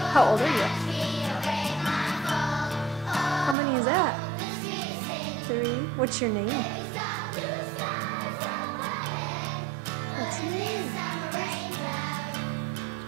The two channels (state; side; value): drops out; left; at 3.6 s